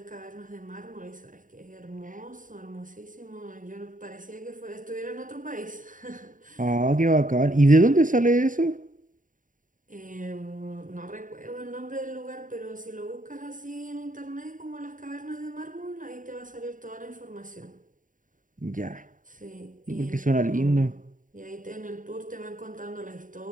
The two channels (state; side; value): late; left; 0.38 ms